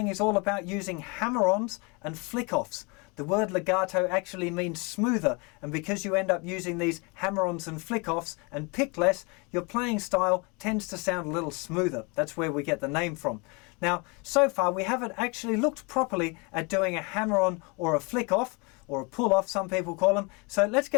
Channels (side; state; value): right; quieter; 30.2 dB